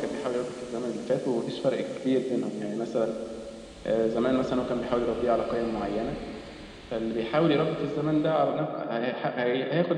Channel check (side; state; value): both; identical; correlation 1.00